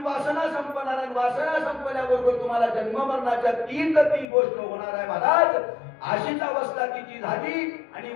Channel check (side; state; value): right; drops out; at 4.2 s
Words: वासना संपणार आहे. वासना संपल्याबरोबर तुम्हाला जन्म मरणाच्या ती गोष्ट होणार आहे महाराज. अशीच अवस्था तिची झाली आणि